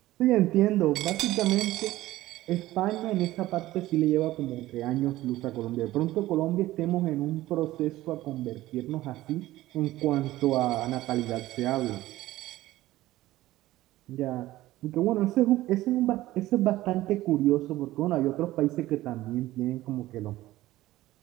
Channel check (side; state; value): left; quieter; 16.3 dB